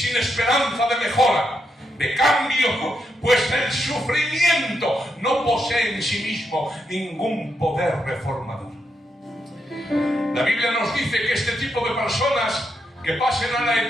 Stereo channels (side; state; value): both; normal; correlation 0.82